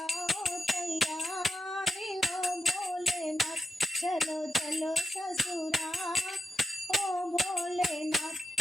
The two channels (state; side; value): normal; both; correlation 0.85